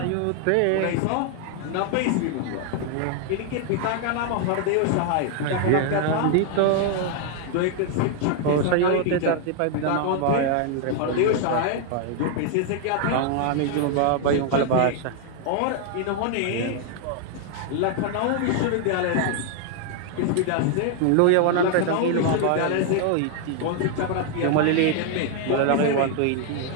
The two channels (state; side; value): different; both; correlation 0.00